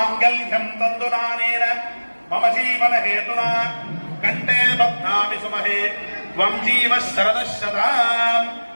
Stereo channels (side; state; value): both; inverted; correlation -1.00